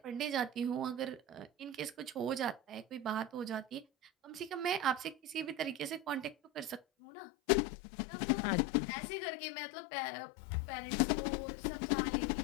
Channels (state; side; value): drops out; right; at 6.8 s